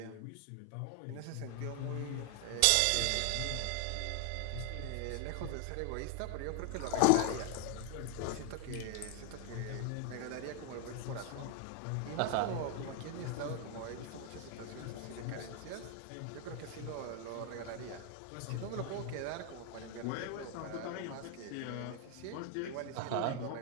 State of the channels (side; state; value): both; different; correlation 0.00